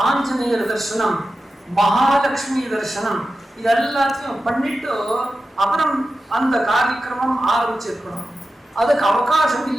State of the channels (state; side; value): normal; both; correlation 0.93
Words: ஆஞ்சநேயர் தர்சனம், மகாலட்சுமி தர்சனம், இது எல்லாத்தையும் பண்ணிட்டு அப்புறம் அந்த காரியக்கிரமம் ஆரம்பிச்சிருக்கணும். அதுக்கு அவகாசம்